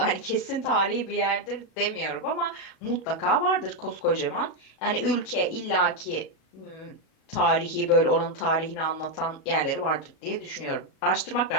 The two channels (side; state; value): right; late; 37 ms